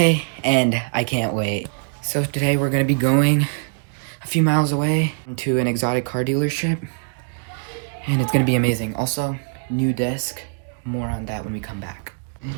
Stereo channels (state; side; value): silent; left; digital silence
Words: and I can't wait. So today we're gonna be going a few miles away to an exotic car dealership, and it's gonna be amazing. Also, new desk. More on that when we come back.